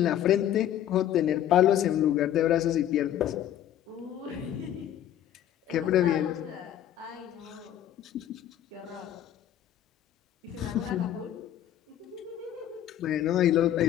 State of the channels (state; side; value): quieter; right; 11.2 dB